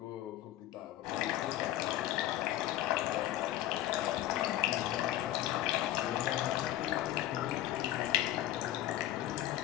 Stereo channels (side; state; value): right; quieter; 14.0 dB